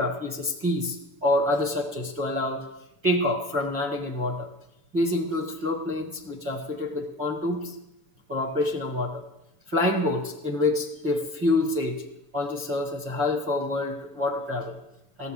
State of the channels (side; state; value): left; late; 6.9 ms